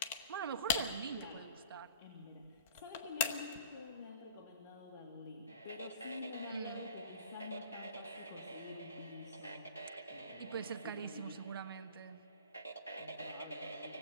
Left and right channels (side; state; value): both; inverted; correlation -0.43